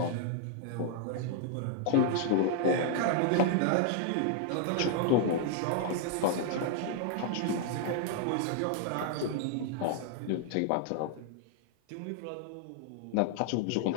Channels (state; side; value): different; both; correlation 0.00